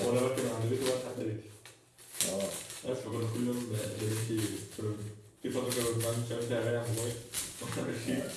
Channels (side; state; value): both; identical; correlation 1.00